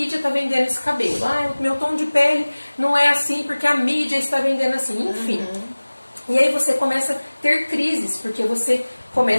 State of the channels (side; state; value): both; inverted; correlation -1.00